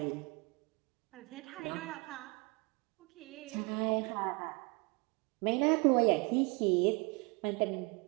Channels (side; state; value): left; quieter; 29.3 dB